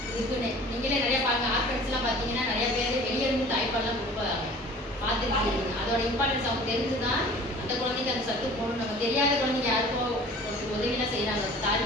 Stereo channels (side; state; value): both; normal; correlation 0.46